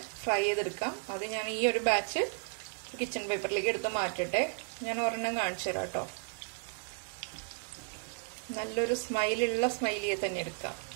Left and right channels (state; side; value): silent; left; 55 dB below the other